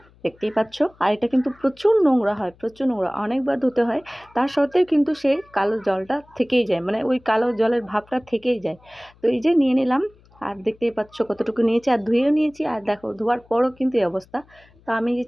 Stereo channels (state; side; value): noise; left; hum, 29 dB below the sound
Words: দেখতেই পাচ্ছ। আর এটা কিন্তু প্রচুর নোংরা হয়, প্রচুর নোংরা, অনেকবার ধুতে হয়। তার সত্ত্বেও কিন্তু সেই কালো জলটা থেকেই যায়, মানে ওই কালো জলের ভাবটা থেকেই যায়। তো এই যে নিয়ে নিলাম, আর দেখতেই পাচ্ছ কতটুকু নিয়েছি, আর ধুয়েও নিয়েছি। আর দেখো ধোয়ার পরও কিন্তু এই অবস্থা। তো আমি যে